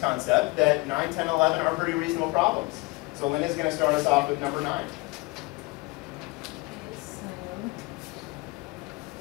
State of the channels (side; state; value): right; quieter; 24.8 dB